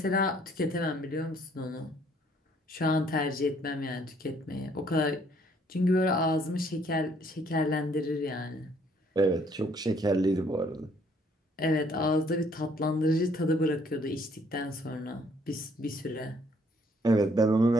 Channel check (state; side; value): normal; both; correlation 0.64